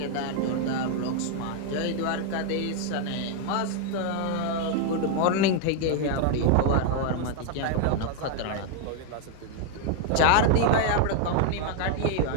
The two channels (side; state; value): both; different; correlation 0.00